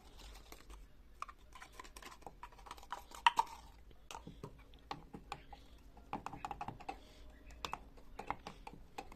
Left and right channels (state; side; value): identical; both; correlation 1.00